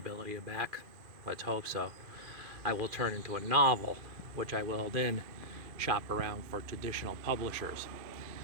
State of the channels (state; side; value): late; left; 2.4 ms